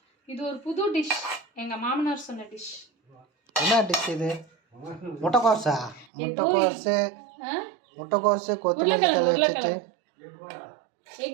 இது ஒரு புது டிஷ், எங்க மாமனார் சொன்ன டிஷ். என்ன டிஷ் இது? முட்டைக்கோஸா? முட்டைக்கோசு கொத்தமல்லி தழை வச்சுட்டு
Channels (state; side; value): drops out; left; at 6.1 s